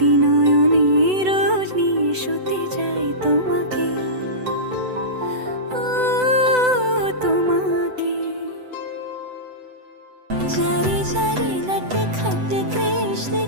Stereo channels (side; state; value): left; late; 7.9 ms